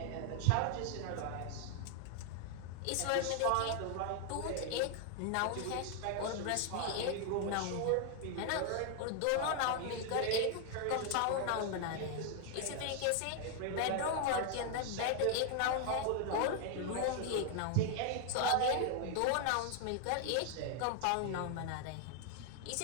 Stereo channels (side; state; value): both; different; correlation 0.00